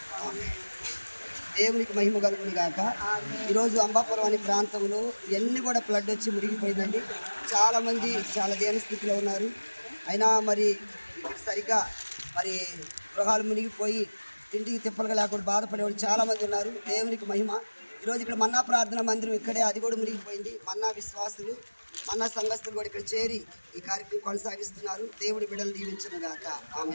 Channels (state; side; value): inverted; both; correlation -1.00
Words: ఆమేన్. దేవునికి మహిమ కలుగును గాక. ఈరోజు అంబాపురం అనే ప్రాంతంలో ఎన్ని కూడా ఫ్లడ్ వచ్చి మునిగిపోయిందండి. చాలామంది చాలా దీన స్థితిలో ఉన్నారు. అయినా మరి సరిగ్గా మరి గృహాలు మునిగిపోయి తిండికి తిప్పలుగా లేకుండా బాధపడేవాళ్ళు చాలామంది ఉన్నారు. దేవునికి మహిమ. ఈరోజు ఇక్కడ మన్నా ప్రార్థన మందిరం ఇక్కడే, అది కూడా మునిగిపోయింది. మన్నా విశ్వాసులు, మన్నా సంఘస్థులు కూడా ఇక్కడ చేరి ఈ కార్యక్రమం కొనసాగిస్తున్నారు. దేవుడి బిడ్డలు దీవించును గాక.